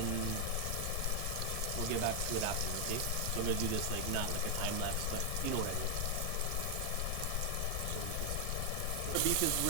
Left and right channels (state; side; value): different; both; correlation 0.00